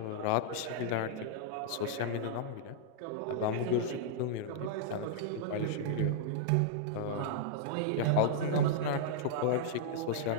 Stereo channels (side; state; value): both; different; correlation -0.02